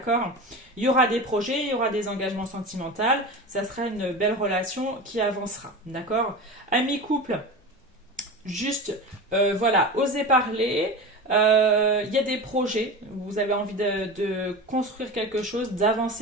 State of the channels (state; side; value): normal; both; correlation 0.29